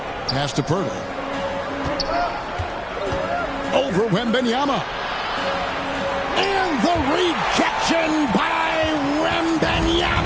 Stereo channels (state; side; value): identical; both; correlation 1.00